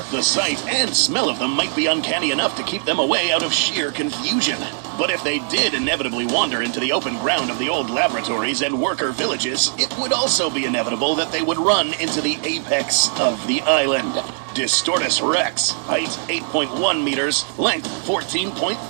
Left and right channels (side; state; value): left; silent; digital silence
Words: the sight and smell of them might be uncanny enough to keep them away out of sheer confusion. But if they did inevitably wander into the open ground of the old laboratories and worker villages, it would also be inevitable that they would run into the apex of the island. Distortus Rex, height 8.1 meters, length